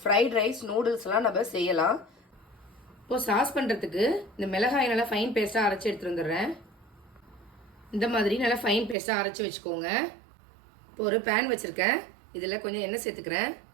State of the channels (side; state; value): left; drops out; at 9.0 s